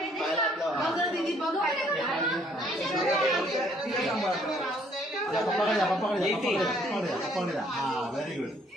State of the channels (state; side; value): normal; both; correlation 0.64